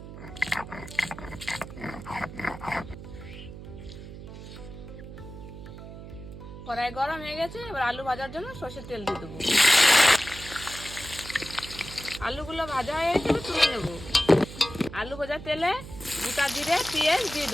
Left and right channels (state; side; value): noise; right; hum, 13 dB below the sound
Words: কড়াই গরম হয়ে গেছে, এবার আলু ভাজার জন্য সরষের তেল দিয়ে দেবো। আলুগুলো ভাজা হয়ে গেছে, এবার তুলে নেব। আলু ভাজার তেলে গোটা জিরে, পেঁয়াজ দিয়ে